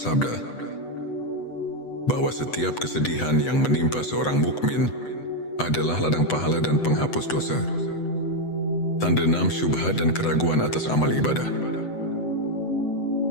bahwa setiap kesedihan yang menimpa seorang mukmin adalah ladang pahala dan penghapus dosa. Tanda 6, syubhat dan keraguan atas amal ibadah.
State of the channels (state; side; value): late; right; 8.0 ms